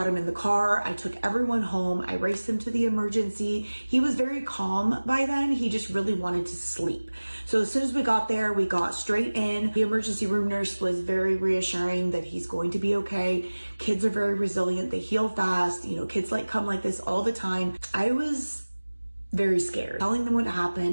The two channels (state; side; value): inverted; both; correlation -1.00